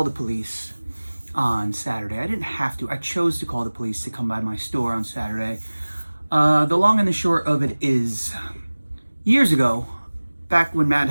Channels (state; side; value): inverted; both; correlation -1.00